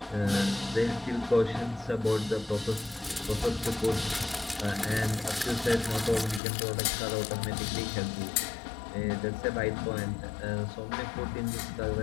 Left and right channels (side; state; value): right; drops out; at 6.4 s